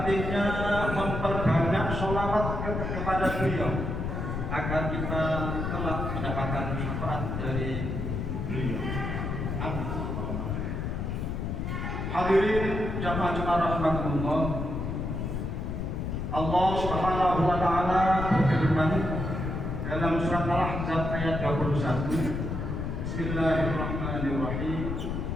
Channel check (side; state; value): left; noise; rumble, 3 dB below the sound